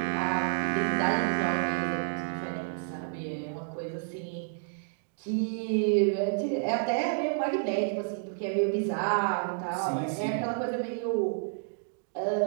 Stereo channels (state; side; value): silent; left; digital silence